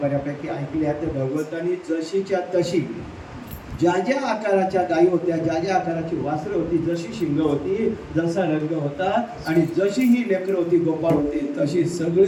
बऱ्यापैकी ऐकल्या. तर भगवंतांनी जशीच्या तशी ज्या ज्या आकाराच्या गायी होत्या, ज्या ज्या आकाराची वासरं होती, जशी शिंग होती, जसा रंग होता आणि जशी ही लेकरं होती, गोपाळ होते, तशी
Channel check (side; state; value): both; identical; correlation 1.00